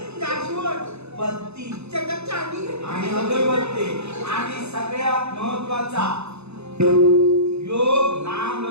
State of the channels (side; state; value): left; late; 0.80 ms